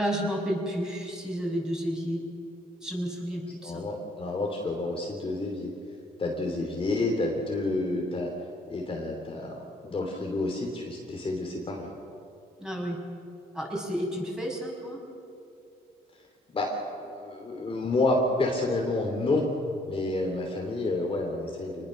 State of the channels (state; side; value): normal; both; correlation 0.65